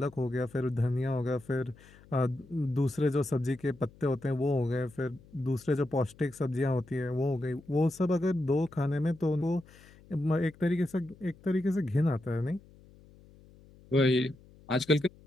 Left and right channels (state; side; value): noise; left; hum, 24 dB below the sound